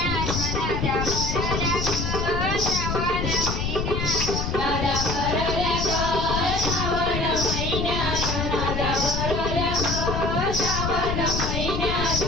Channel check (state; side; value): noise; left; rumble, 2 dB below the sound